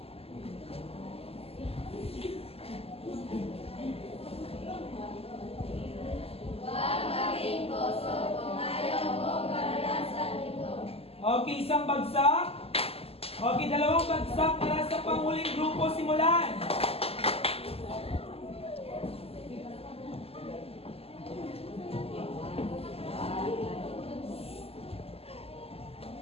Okay, isang bagsak. Okay, dalawang bagsak para sa panghuling grupo. Simulan.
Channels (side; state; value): right; late; 0.29 ms